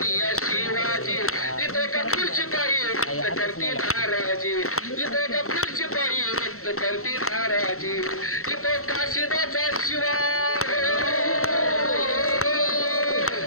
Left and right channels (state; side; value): late; right; 0.63 ms